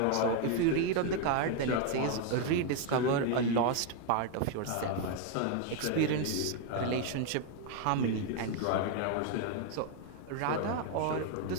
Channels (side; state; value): both; different; correlation 0.01